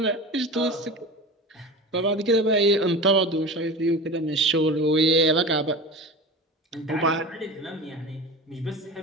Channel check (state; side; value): normal; both; correlation 0.31